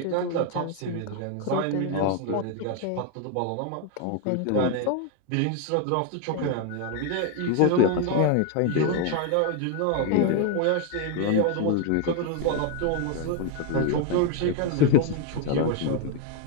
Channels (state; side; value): different; both; correlation 0.01